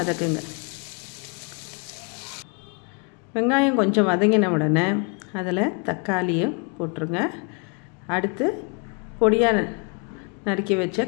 வெங்காயம் கொஞ்சம் வதங்கின உடனே அதில் தக்காளியை போட்டுருங்க. அடுத்து பொடியாக நறுக்கி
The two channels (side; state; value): right; quieter; 34.0 dB